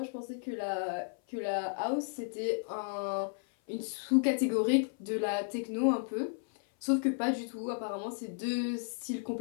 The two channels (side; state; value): right; silent; 55 dB below the other